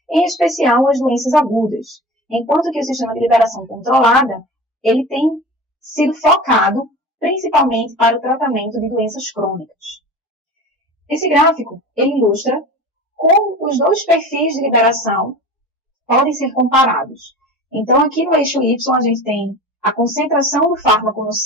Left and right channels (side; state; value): both; normal; correlation 0.35